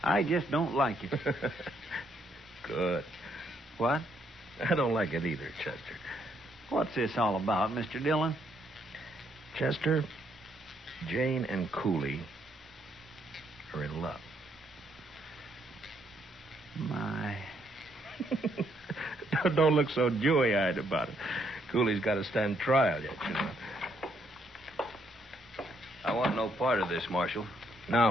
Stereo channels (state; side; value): normal; both; correlation 0.72